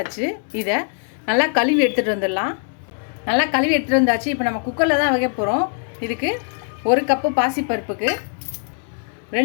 இதை நல்லா கழுவி எடுத்துகிட்டு வந்துடலாம். நல்லா கழுவி எடுத்துகிட்டு வந்தாச்சு. இப்போ நம்ம குக்கரில் தான் வைக்க போகிறோம். இதுக்கு 1 கப்பு பாசிப்பருப்புக்கு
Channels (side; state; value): right; silent; 56 dB below the other